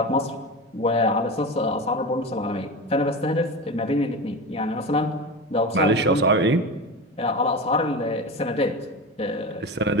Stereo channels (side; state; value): both; normal; correlation 0.25